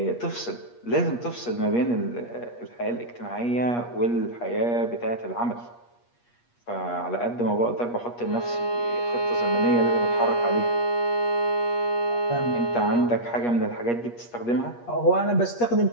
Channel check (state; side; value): late; right; 8.4 ms